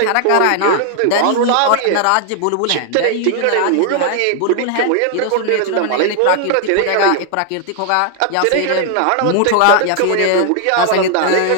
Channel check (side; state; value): both; different; correlation 0.00